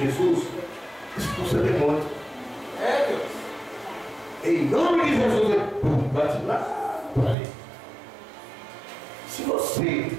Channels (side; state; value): left; drops out; at 7.4 s